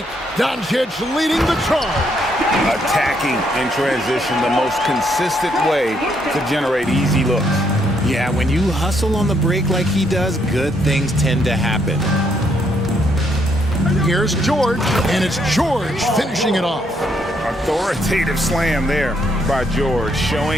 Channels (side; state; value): both; normal; correlation 0.73